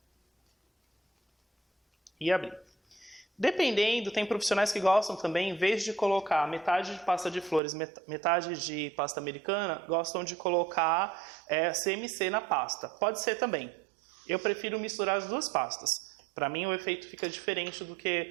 E abrir. Dependendo, tem profissionais que gostam também, em vez de colocar metade de pasta de flores, metade de pasta americana, gostam de colocar CMC na pasta. Pode ser também. Eu prefiro misturar as duas pastas. Para mim o efeito fica diferente do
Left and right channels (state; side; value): drops out; left; at 7.6 s